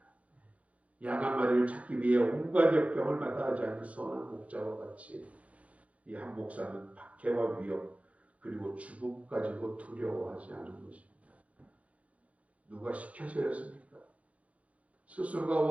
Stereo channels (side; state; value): left; late; 0.066 ms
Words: 양 한 마리를 찾기 위해 온갖 역경을 마다하지 않는 선한 목자와 같이 이 한 목사는 박해와 위협 그리고 죽음까지도 두려워하지 않은 것입니다. 누가 시켜서였습니까? 스스로가